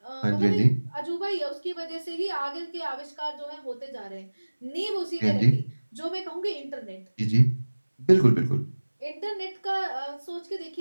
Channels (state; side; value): inverted; both; correlation -1.00